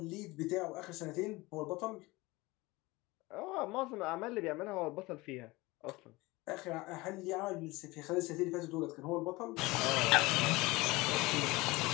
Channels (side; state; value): right; quieter; 21.8 dB